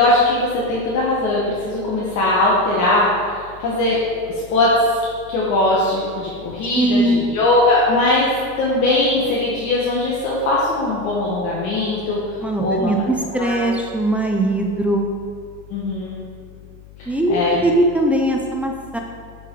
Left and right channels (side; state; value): left; noise; hum, 22 dB below the sound